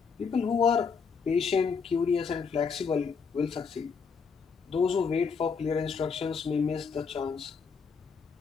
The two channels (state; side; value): quieter; right; 5.7 dB